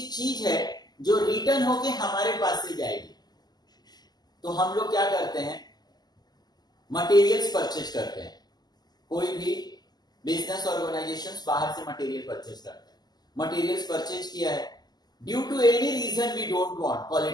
चीज है जो रिटर्न होके हमारे पास से जाएगी। तो हम लोग क्या करते हैं? मटेरियल्स परचेज करते हैं। कोई भी बिजनेस ऑर्गेनाइजेशंस बाहर से मटेरियल परचेज करते हैं। मटेरियल्स परचेज किया है, due to any reason we don't want,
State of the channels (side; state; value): right; late; 0.20 ms